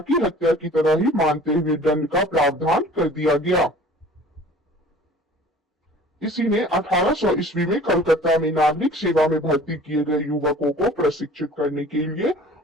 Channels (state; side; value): normal; both; correlation 0.47